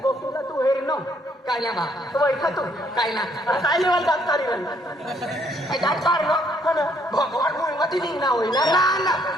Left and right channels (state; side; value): normal; both; correlation 0.68